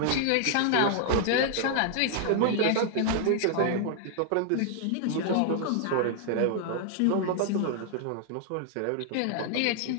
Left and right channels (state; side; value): different; both; correlation 0.00